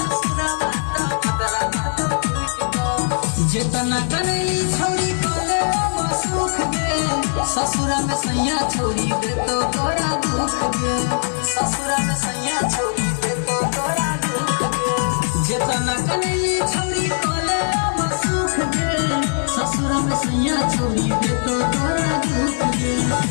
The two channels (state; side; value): silent; right; digital silence